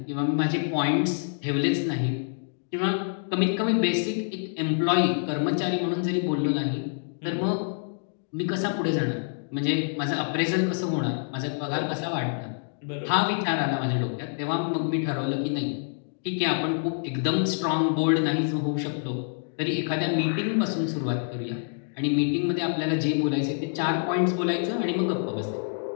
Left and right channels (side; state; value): right; silent; digital silence